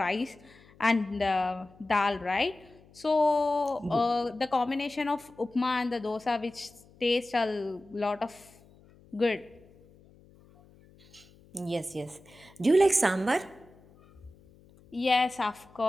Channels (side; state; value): left; noise; hum, 27 dB below the sound